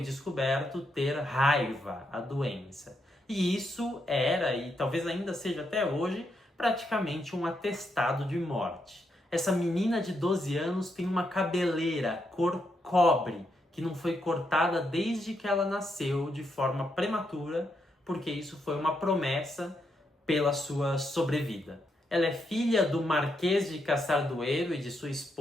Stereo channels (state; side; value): normal; both; correlation 0.80